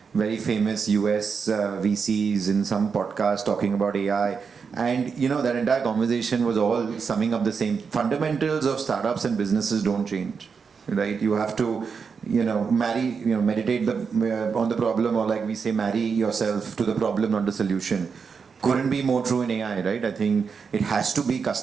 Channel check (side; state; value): left; quieter; 5.8 dB